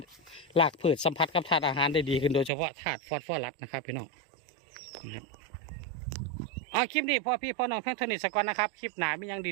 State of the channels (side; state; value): left; drops out; at 2.5 s